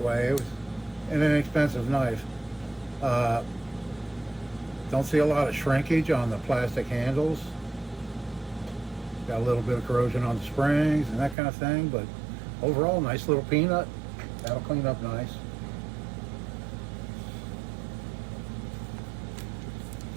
way. It was an inexpensive knife. Don't see a lot of shrinkage on the plastic handles. Got a little bit of corrosion on the springs and that kind of thing, but overall, nice little peanut. That'll clean up nice.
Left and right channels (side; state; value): left; drops out; at 11.4 s